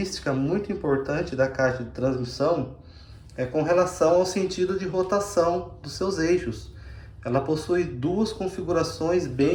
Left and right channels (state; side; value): identical; both; correlation 1.00